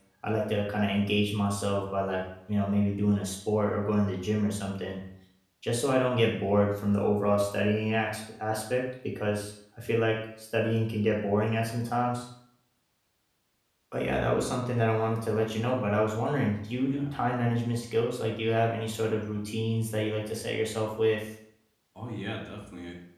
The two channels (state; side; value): identical; both; correlation 1.00